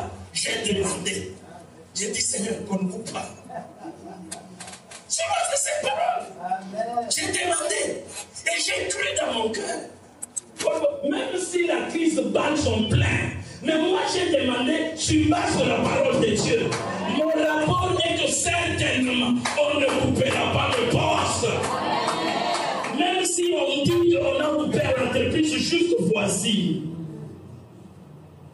j'ai demandé. J'ai dit, Seigneur, qu'on ne coupe pas. Sur base de cette parole, j'ai demandé. Et j'ai cru dans mon cœur. Même si la crise bat son plein, mais moi j'ai demandé sur base de la parole de Dieu. Mon rapport est que certainement on ne coupera pas le poste. Même si on dit qu'on a coupé l'entreprise juste voici.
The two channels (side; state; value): both; identical; correlation 1.00